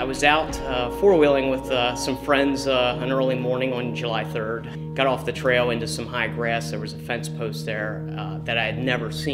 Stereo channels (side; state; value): both; identical; correlation 1.00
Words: was out four-wheeling with some friends an early morning on July 3rd. Got off the trail into some high grass. There was a fence post there that I had never